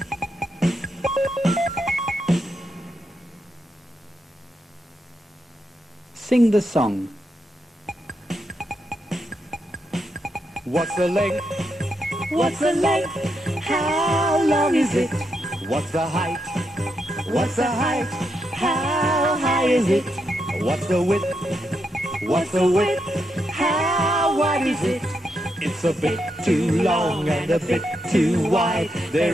Sing the song. What's the length? What's the length? How long is it? What's the height? What's the height? How high is it? What's the width? What's the width? How wide is it? It's a bit too long and a bit too wide.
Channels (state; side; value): normal; both; correlation 0.82